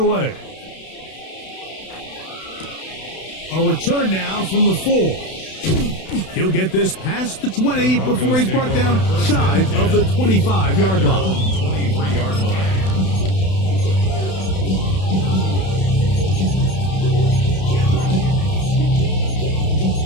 A return now from the 4. He'll get this past the 20 before he's brought down shy of the 25-yard line. 23-yard line.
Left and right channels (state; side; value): late; right; 32 ms